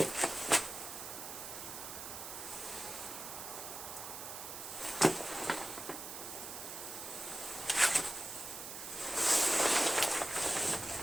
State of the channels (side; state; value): right; noise; hiss, 8 dB below the sound